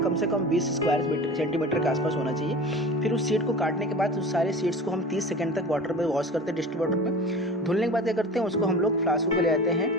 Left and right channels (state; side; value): normal; both; correlation 0.36